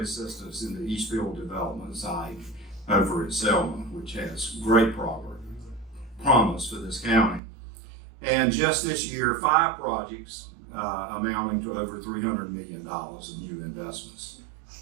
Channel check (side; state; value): left; drops out; at 7.4 s